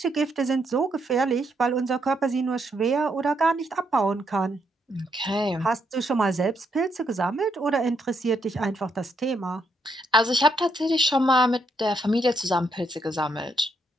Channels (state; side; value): normal; both; correlation 0.76